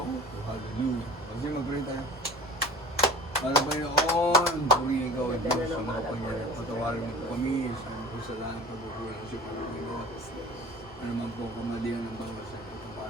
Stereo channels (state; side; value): normal; both; correlation 0.41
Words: hallelujah. Kasi mag-pray tayo. Malabayon, purihin ikaw ang Diyos sa mga pangyayari. Patawarin mo po kami sa mga kasalanan pagkukulang sa Panginoon. Ano man po kamalian ng bawat sa itong